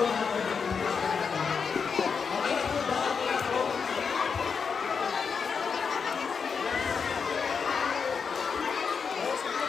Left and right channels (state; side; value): quieter; right; 5.9 dB